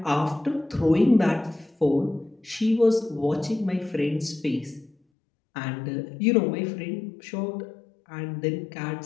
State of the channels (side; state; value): right; drops out; at 5.0 s